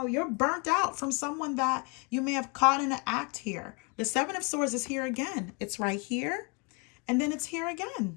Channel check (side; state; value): right; quieter; 32.0 dB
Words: you're burnt out from someone that you may have caught in an act here. The Seven of Swords is here again. It's right here, and then it's here